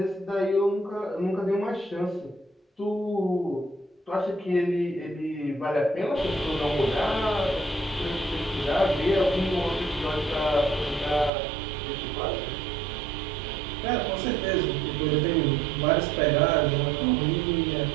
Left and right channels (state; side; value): drops out; left; at 11.3 s